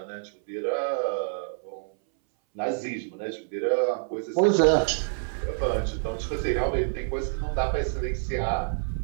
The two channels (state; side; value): silent; left; 60 dB below the other